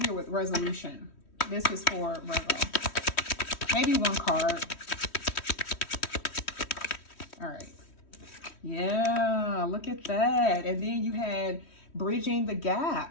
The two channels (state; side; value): late; right; 3.1 ms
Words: here with resolution. This is for Virgo. Maybe one card. All right. Yeah, look at that. And then you had bridging the